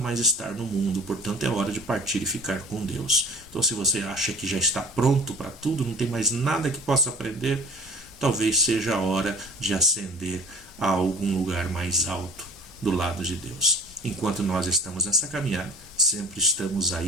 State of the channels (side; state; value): both; normal; correlation 0.44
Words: estar no mundo, portanto é hora de partir e ficar com Deus. Então, se você acha que já está pronto para tudo, não tem mais nada que possa aprender, talvez seja a hora de ascender a algum lugar mais alto do lado de Deus. Enquanto nós estamos nessa caminhada, sempre estamos